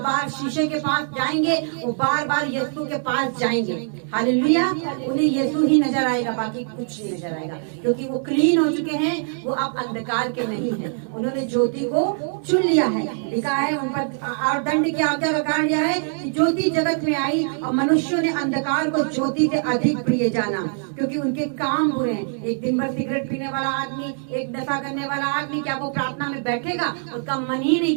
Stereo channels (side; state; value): left; silent; 64 dB below the other